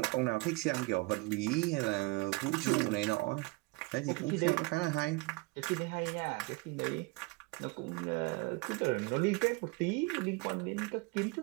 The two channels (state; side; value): quieter; left; 26.1 dB